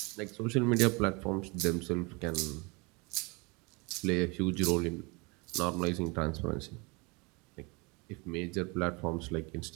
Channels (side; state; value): left; quieter; 28.3 dB